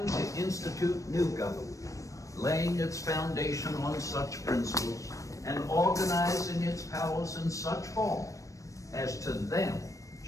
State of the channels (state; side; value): late; right; 0.16 ms